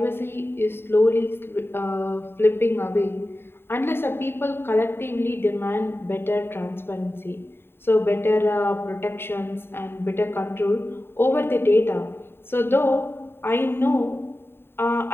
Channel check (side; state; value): right; late; 0.11 ms